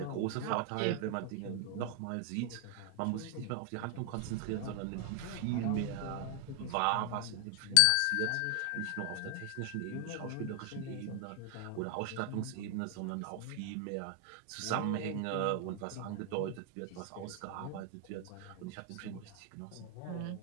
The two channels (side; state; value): both; different; correlation 0.00